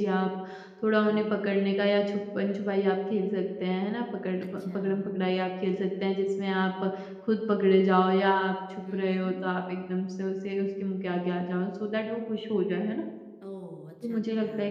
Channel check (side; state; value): both; identical; correlation 1.00